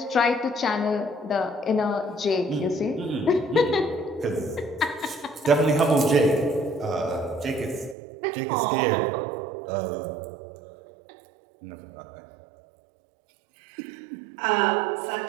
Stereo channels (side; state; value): left; drops out; at 8.0 s